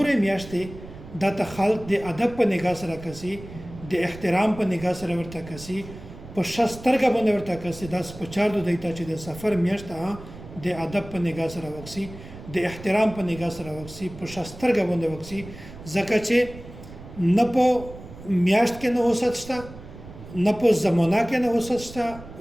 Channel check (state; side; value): noise; right; rumble, 15 dB below the sound